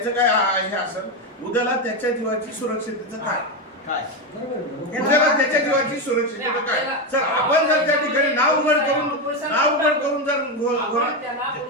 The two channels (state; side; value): normal; both; correlation 0.11